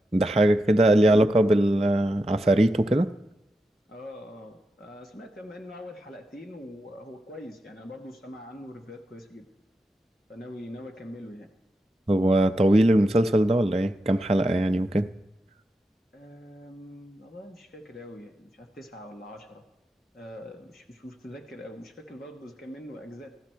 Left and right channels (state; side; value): normal; both; correlation 0.87